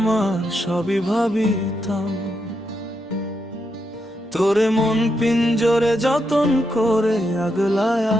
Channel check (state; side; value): normal; both; correlation 0.82